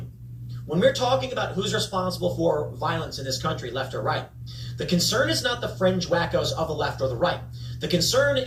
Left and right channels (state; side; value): identical; both; correlation 1.00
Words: When we're talking about who's responsible for violence in this country, left or right, the concern is not the fringe wackos of the left or the right. The concern